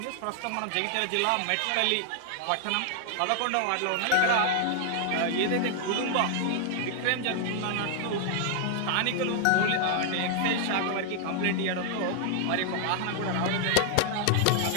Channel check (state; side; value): different; both; correlation 0.00